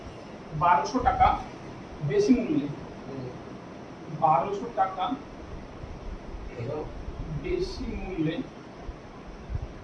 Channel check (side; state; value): both; identical; correlation 1.00